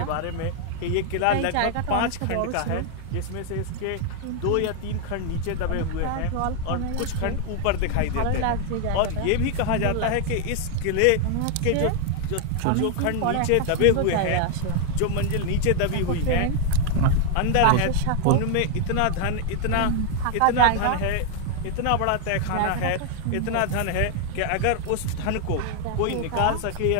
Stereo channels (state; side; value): different; both; correlation 0.00